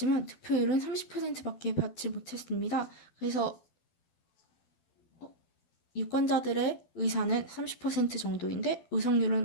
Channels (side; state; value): right; late; 12 ms